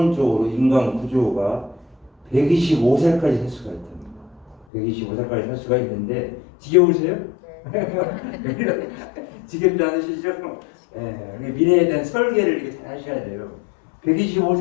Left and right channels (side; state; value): right; drops out; at 4.7 s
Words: 인간 구조가 125세까지 살 수가 있답니다. 125세까지 살 수가 있는데 지겨우세요? 네. 지겹지 않으시죠? 미래에 대한 설계를 이렇게 잘 하셔야 돼요.